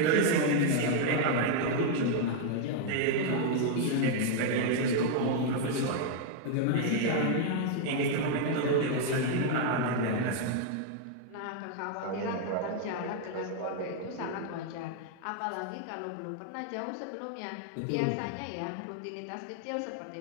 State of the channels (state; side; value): different; both; correlation 0.00